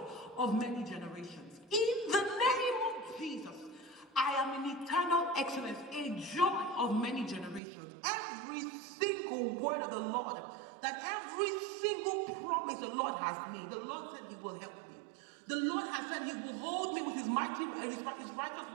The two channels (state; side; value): drops out; left; at 7.6 s